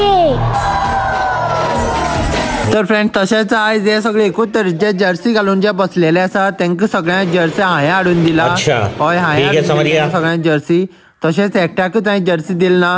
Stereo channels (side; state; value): both; identical; correlation 1.00